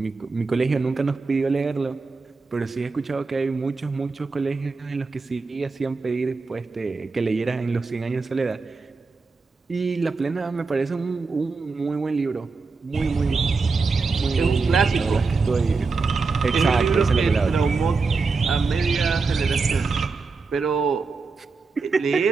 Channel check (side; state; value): left; quieter; 4.3 dB